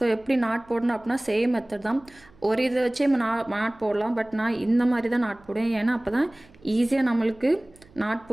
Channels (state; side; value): noise; right; hum, 27 dB below the sound